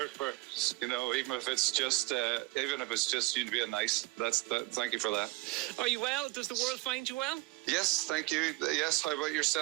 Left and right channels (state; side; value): quieter; left; 22.9 dB